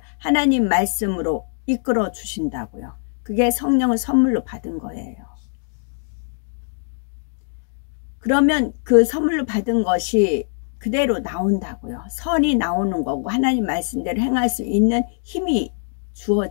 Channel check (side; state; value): right; silent; digital silence